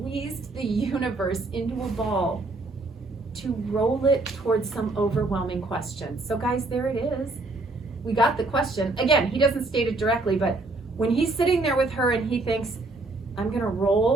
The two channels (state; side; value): quieter; left; 3.2 dB